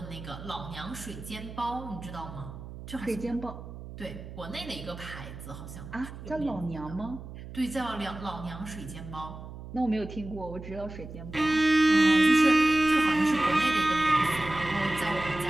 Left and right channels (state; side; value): noise; right; hum, 12 dB below the sound